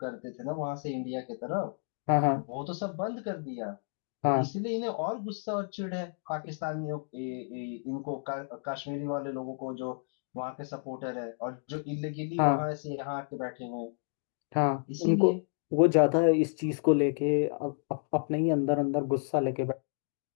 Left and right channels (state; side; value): silent; right; digital silence